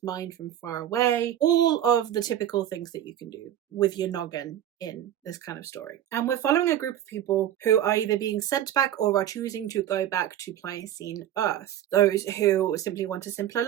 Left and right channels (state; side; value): quieter; left; 11.5 dB